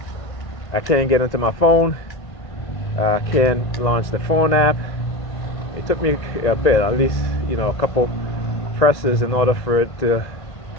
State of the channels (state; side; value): late; right; 1.9 ms